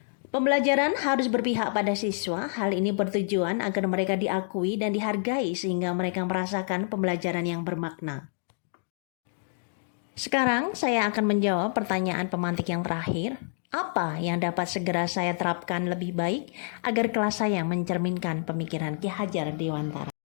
Pembelajaran harus berpihak pada siswa. Hal ini bertujuan agar mereka diakui dan dihargai sehingga mereka merasakan pembelajaran yang bermakna. Sekarang saya akan menjawab pertanyaan pemantik yang terakhir. Apa yang dapat segera saya terapkan lebih baik agar kelas saya mencerminkan pemikiran Ki Hajar Dewantara?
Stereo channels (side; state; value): right; silent; digital silence